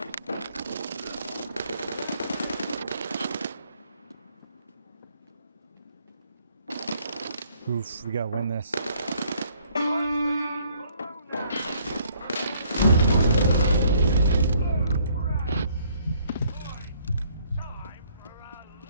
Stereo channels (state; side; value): inverted; both; correlation -0.64